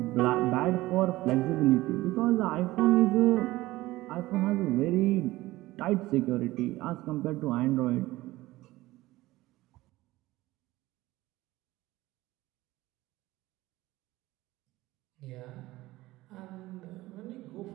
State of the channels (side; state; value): left; quieter; 18.1 dB